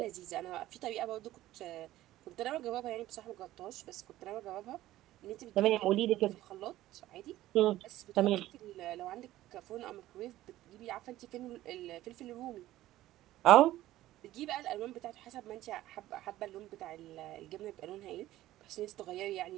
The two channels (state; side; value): quieter; left; 15.1 dB